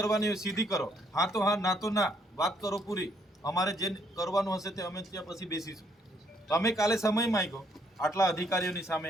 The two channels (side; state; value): both; normal; correlation 0.69